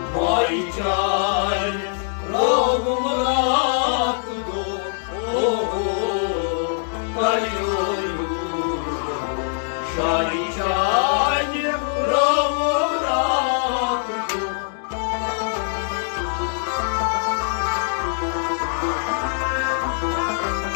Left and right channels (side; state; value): right; silent; digital silence